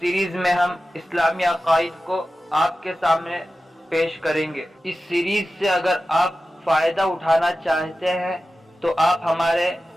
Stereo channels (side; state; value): both; normal; correlation 0.94